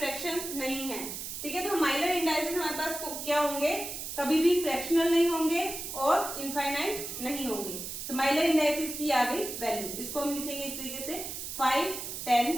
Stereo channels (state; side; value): noise; right; hiss, 7 dB below the sound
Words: नहीं है। ठीक है, तो माइलर इंडाइसिस हमारे पास क्या होंगे, कभी भी फ्रैक्शनल नहीं होंगे और इनफाइनाइट नहीं होंगे। तो माइलर इंडाइसिस की आ गई वैल्यू, इसको हम लिखेंगे इस तरीके से 5, 10,